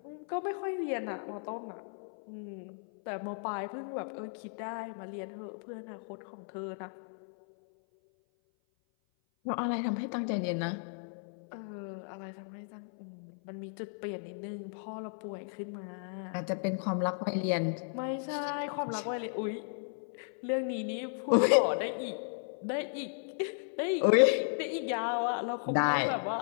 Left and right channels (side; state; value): right; silent; 55 dB below the other